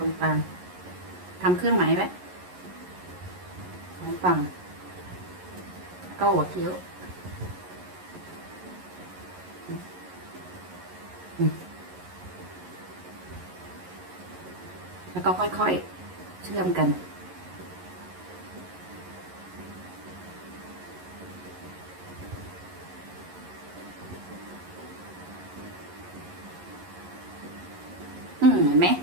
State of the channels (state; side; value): late; left; 11 ms